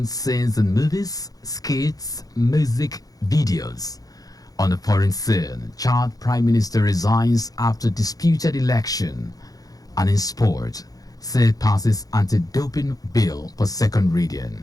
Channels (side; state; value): right; late; 0.18 ms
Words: scenes in movies, skits, music, videos. On the foreign scene, Chad Prime Minister resigns after disputed election. And in sport, Senate passes anti-doping bill for second reading.